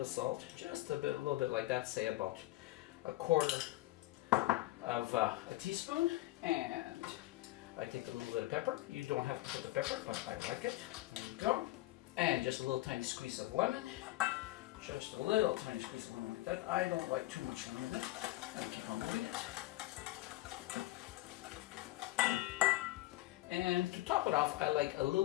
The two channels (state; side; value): quieter; right; 17.9 dB